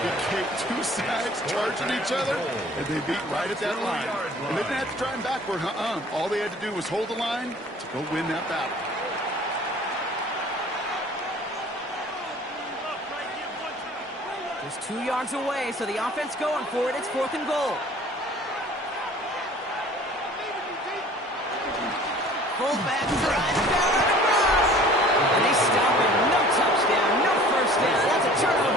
Kate, 2 sides charging each other, and they beat right at that line. And they didn't have to drive backward, All they had to do was hold the line to go win that battle. Just 2 yards away, so the offense going for it. It's 4th and goal. Fullback drive down across. And they stop it. No touchdown, no 1st down. That's a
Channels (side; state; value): both; normal; correlation 0.49